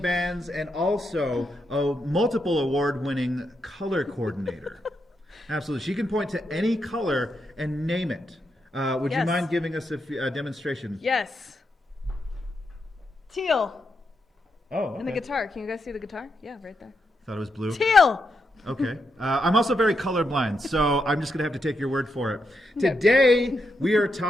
and also a multiple award-winning color coordinator. Absolutely, she can point to any color and name it. Would you Yes. mind giving us a demonstration? Yes. Teal. Oh, okay. And the guitar. Can you guys see the guitar? Yeah, right there. Thought it was blue. Teal. Okay. I'm also very colorblind, so I'm just going to have to take your word for it. Okay. Today, we are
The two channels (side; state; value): both; normal; correlation 0.83